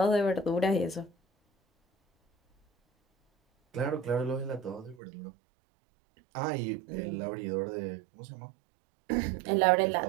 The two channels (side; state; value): left; drops out; at 5.0 s